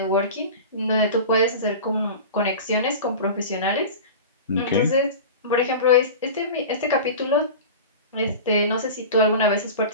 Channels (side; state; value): both; inverted; correlation -0.32